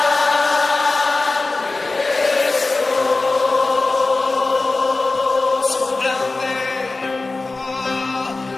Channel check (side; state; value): right; quieter; 3.4 dB